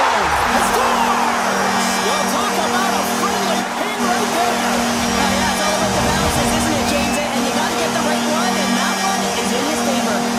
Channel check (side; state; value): both; identical; correlation 1.00